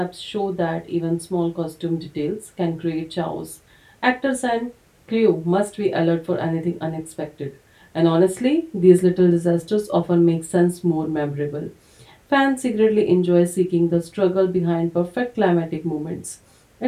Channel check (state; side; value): identical; both; correlation 1.00